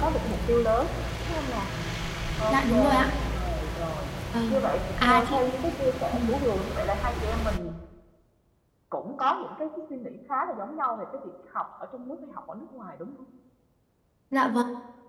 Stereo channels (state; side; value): identical; both; correlation 1.00